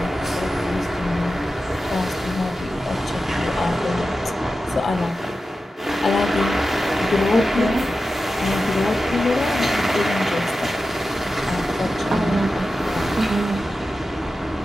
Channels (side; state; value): both; normal; correlation 0.92